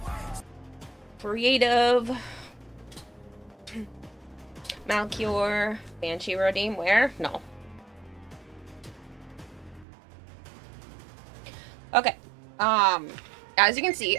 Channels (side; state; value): left; drops out; at 9.9 s